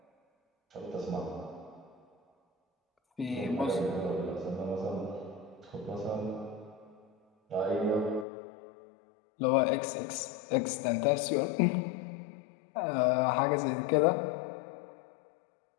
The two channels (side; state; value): right; drops out; at 8.2 s